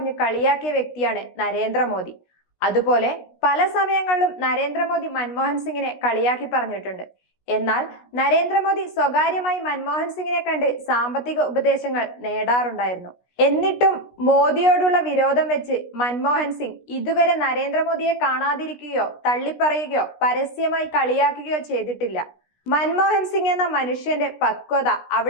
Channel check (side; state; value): right; late; 17 ms